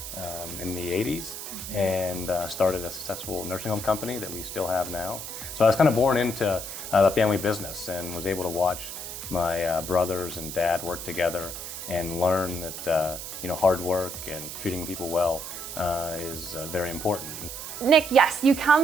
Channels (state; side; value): noise; right; hiss, 8 dB below the sound